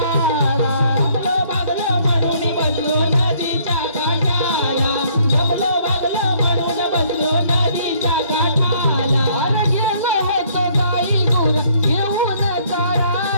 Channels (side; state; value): both; inverted; correlation -0.63